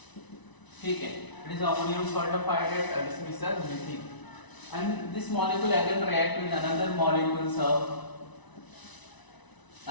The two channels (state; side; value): late; right; 1.0 ms